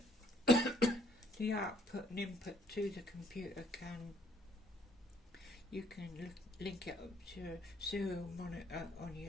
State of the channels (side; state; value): both; normal; correlation 0.65